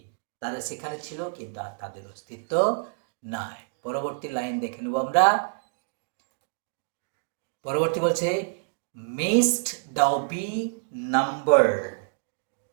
তারা সেখানে ছিল কিন্তু আর তাদের অস্তিত্ব নাই। পরবর্তী লাইন দেখে নেব আমরা। পরবর্তী বলছে mayst thou be numbered,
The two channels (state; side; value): silent; left; digital silence